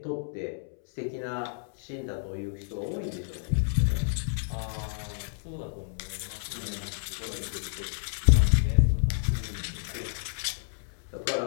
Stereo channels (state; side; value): silent; right; 58 dB below the other